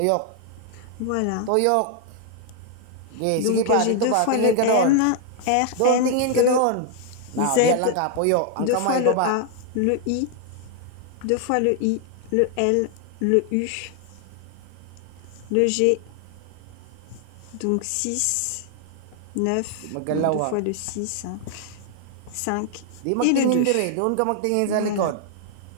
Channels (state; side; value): different; both; correlation 0.00